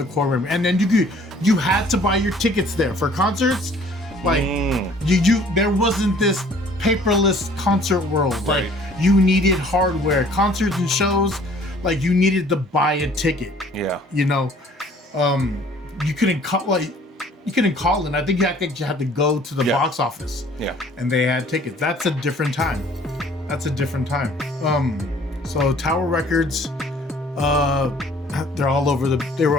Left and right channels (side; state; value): both; normal; correlation 0.55